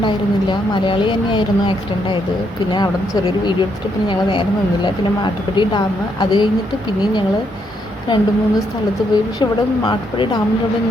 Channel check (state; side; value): normal; both; correlation 0.75